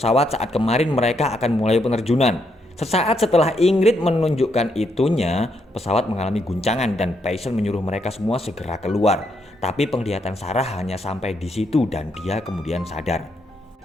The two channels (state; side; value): normal; both; correlation 0.77